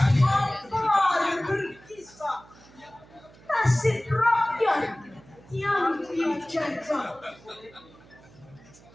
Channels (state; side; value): noise; right; hum, 24 dB below the sound